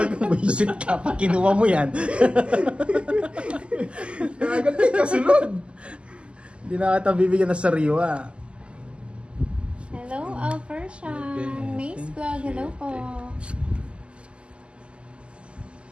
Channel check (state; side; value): late; left; 0.054 ms